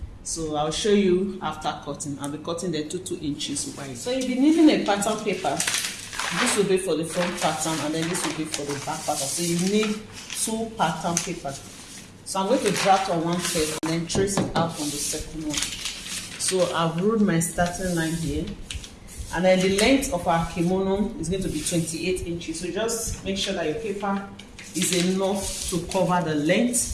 so I'll show you after cutting. I'll be cutting the 2 inches wide. So you'll be needing a pattern paper. This will be for the front pattern, and then this will be for the back pattern. So you need 2 pattern papers. So I'm going to draft on one first and then trace it out on the second one. So I've ruled my starting line here, and then the length of our kimono is going to be 28 inches. So just make sure that your paper is enough to cover the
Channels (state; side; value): identical; both; correlation 1.00